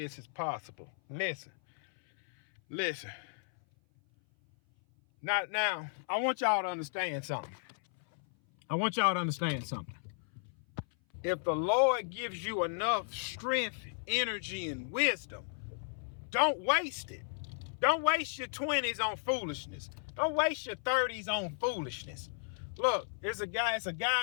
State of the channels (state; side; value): silent; right; 55 dB below the other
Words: is possible. Listen. Now, I want y'all to understand something. If the Lord gives you enough strength, energy, and wisdom, don't waste it. Don't waste your 20s on foolishness. Don't waste your 30s on foolishness. Look, it's a guy